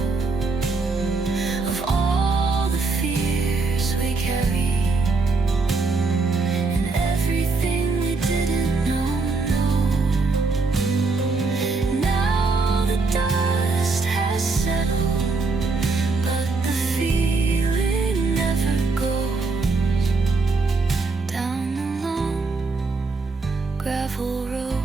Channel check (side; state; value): left; quieter; 3.9 dB